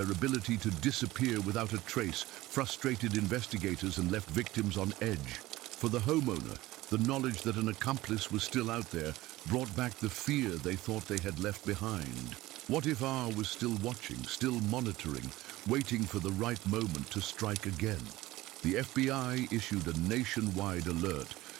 ability to disappear without a trace frustrated investigators and left victims on edge. For the homeowner, the knowledge that an accomplice was still out there brought back the fear they thought they had left behind. What if R was still watching, still monitoring, waiting for the right moment to strike again? The FBI issued a nationwide alert,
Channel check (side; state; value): left; quieter; 17.8 dB